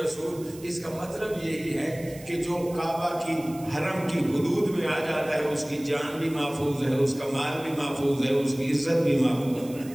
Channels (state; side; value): noise; right; hiss, 19 dB below the sound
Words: اس کا مطلب یہی ہے کہ جو کعبہ کی حرم کی حدود میں آ جاتا ہے اس کی جان بھی محفوظ ہے، اس کا مال بھی محفوظ ہے، اس کی عزت بھی محفوظ ہے.